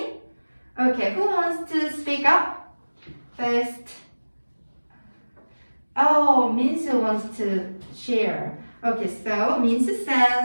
Okay, who wants to speak up first? Oh, Minsu wants to share. Okay, so Minsu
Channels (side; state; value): both; inverted; correlation -1.00